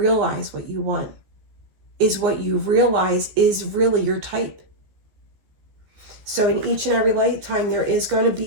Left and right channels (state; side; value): late; left; 14 ms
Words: what you want, is what you realize is really your type. So in each and every lifetime, there is going to